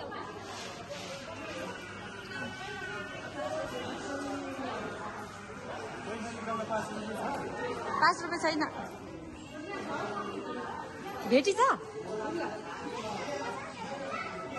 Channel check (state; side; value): identical; both; correlation 1.00